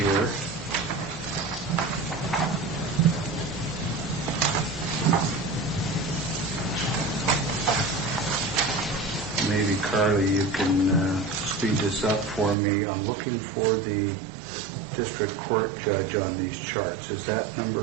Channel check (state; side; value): drops out; left; at 12.6 s